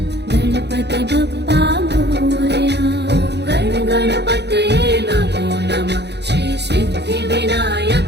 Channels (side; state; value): left; late; 0.49 ms